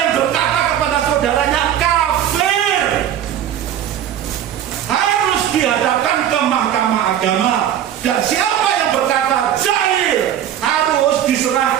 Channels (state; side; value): quieter; left; 10.5 dB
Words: berkata kepada saudaranya kafir harus dihadapkan ke mahkamah agama. Dan siapa yang berkata jahil harus